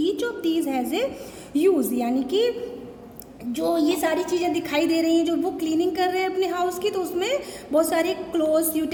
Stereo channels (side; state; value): both; identical; correlation 1.00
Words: Each of these has a use. यानी कि जो ये सारी चीज़ें दिखाई दे रही हैं जो वो क्लीनिंग कर रहे हैं अपने हाउस की, तो उसमें बहुत सारे clothes,